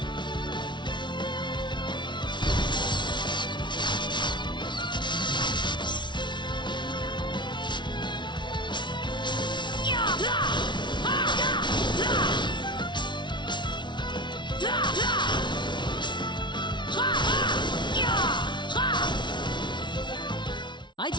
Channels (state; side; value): late; right; 0.23 ms